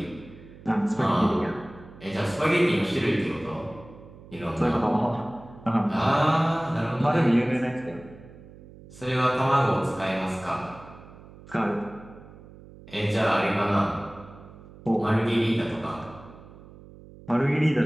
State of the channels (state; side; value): noise; right; hum, 19 dB below the sound